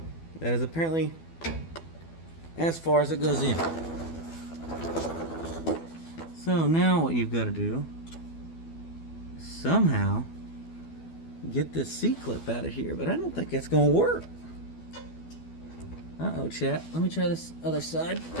That is apparently as far as it goes in. So now what you've got to do is somehow get this C-clip out of here, but I don't think that's going to work. Uh-oh, chat. Let me try this other side.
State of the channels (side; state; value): right; late; 12 ms